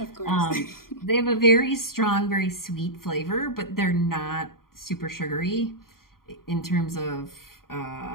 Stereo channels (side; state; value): right; late; 0.92 ms